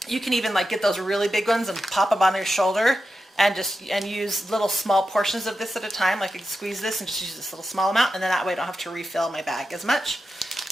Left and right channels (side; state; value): both; normal; correlation 0.90